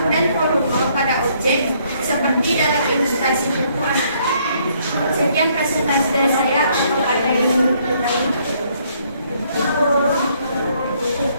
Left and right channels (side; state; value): both; inverted; correlation -0.67